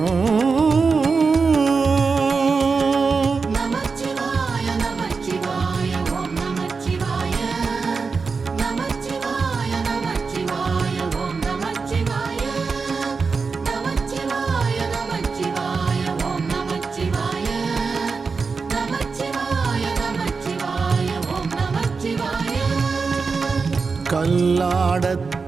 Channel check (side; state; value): left; quieter; 4.8 dB